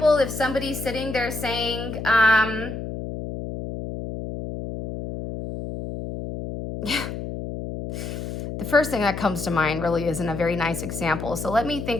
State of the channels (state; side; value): noise; left; hum, 7 dB below the sound